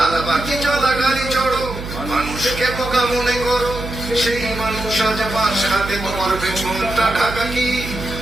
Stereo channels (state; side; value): noise; right; hum, 9 dB below the sound